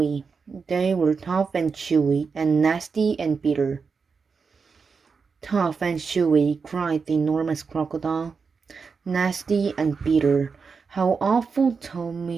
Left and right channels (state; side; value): quieter; left; 5.2 dB